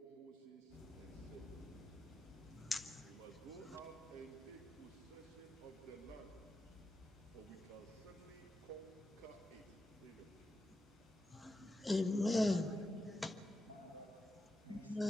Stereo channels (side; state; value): both; normal; correlation 0.88